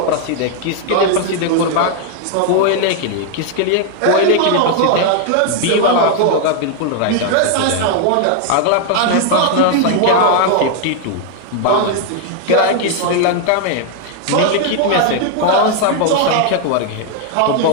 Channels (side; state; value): both; different; correlation 0.00